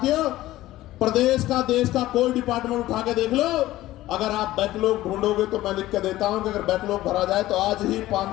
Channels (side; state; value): right; quieter; 15.9 dB